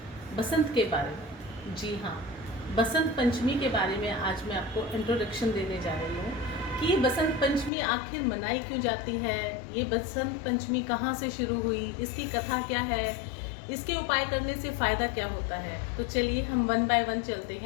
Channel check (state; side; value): drops out; right; at 7.7 s